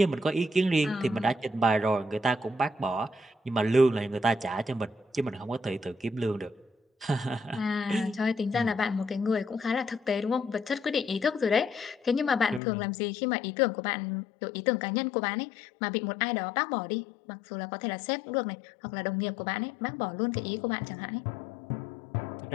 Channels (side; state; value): right; drops out; at 12.6 s